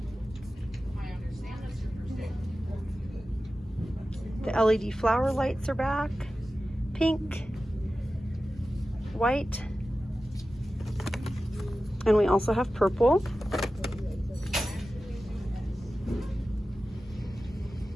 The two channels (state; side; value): normal; both; correlation 0.94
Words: The LED flower lights are back. Pink, white, and we also have purple.